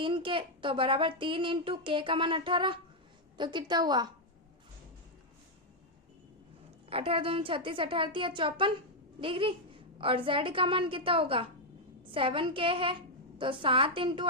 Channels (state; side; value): normal; both; correlation -0.01